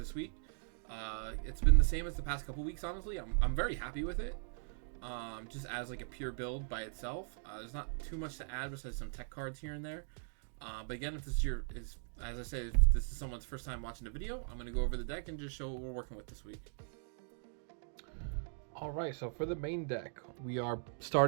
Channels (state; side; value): silent; left; digital silence